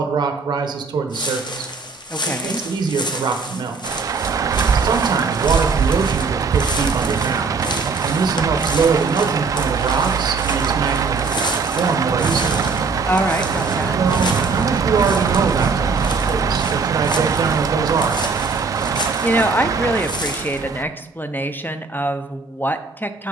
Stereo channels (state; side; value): quieter; left; 4.6 dB